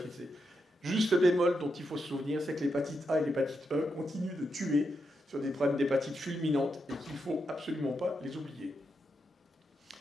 C. Juste le bémol dont il faut se souvenir, c'est que l'hépatite A et l'hépatite E continuent de tuer sur des problèmes d'hépatite fulminante et qu'il ne faut absolument pas les oublier.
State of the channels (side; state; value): both; normal; correlation 0.84